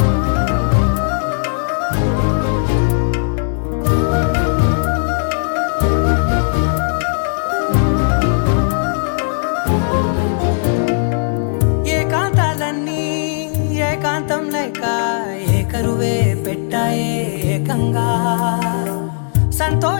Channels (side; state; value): right; silent; digital silence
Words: ఏకాంతాలన్నీ ఏకాంతం లేక ఏకరువే పెట్టాయే ఏకంగా